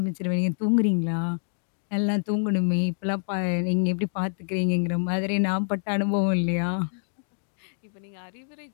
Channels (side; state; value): right; silent; digital silence